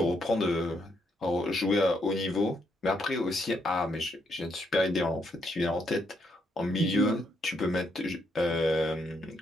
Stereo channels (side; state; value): both; normal; correlation 0.76